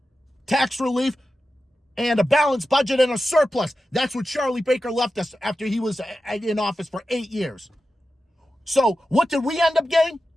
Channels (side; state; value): both; normal; correlation 0.92